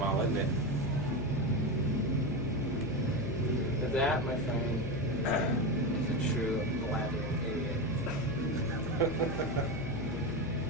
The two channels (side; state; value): left; noise; hum, 7 dB below the sound